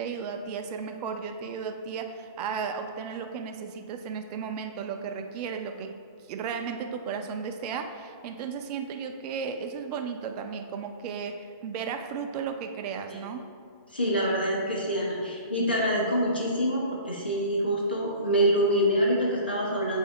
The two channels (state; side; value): inverted; both; correlation -0.38